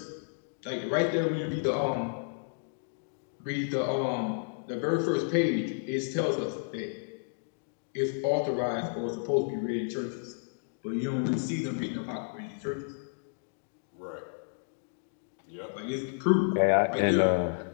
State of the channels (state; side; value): silent; right; digital silence